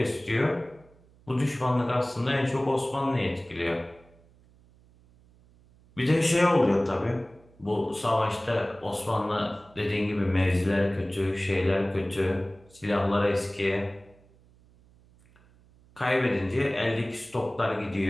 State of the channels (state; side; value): noise; right; hum, 28 dB below the sound